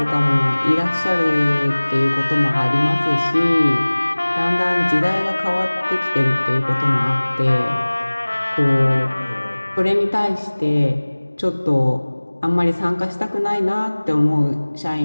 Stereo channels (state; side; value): inverted; both; correlation -1.00